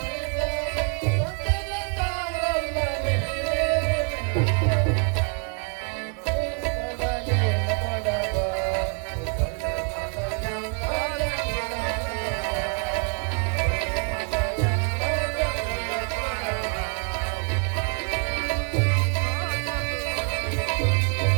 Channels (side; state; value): left; quieter; 36.7 dB